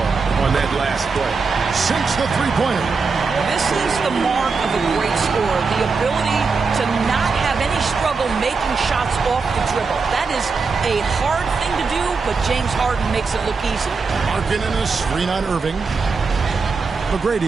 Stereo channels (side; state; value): left; quieter; 4.7 dB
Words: on that last play. Sinks the three-pointer. This is the mark of a great scorer, the ability to not have any struggle making shots off the dribble. That is a hard thing to do, but James Harden makes it look easy. Markkanen a screen on Irving.